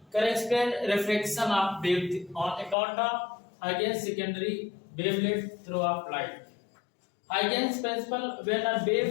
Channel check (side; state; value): right; drops out; at 2.8 s